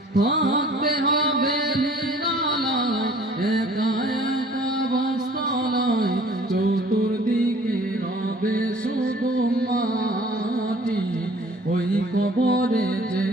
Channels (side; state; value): both; normal; correlation 0.52